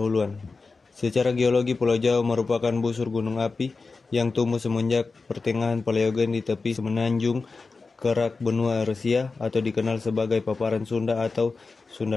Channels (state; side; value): quieter; right; 4.1 dB